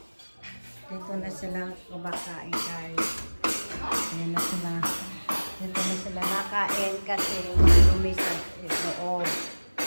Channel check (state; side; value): inverted; both; correlation -1.00